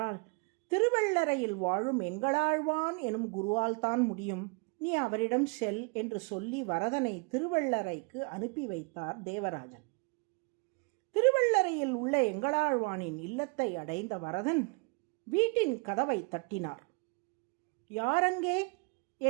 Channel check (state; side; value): quieter; left; 32.9 dB